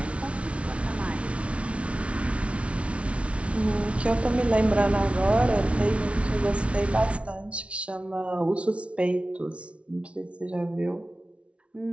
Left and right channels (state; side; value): late; left; 0.061 ms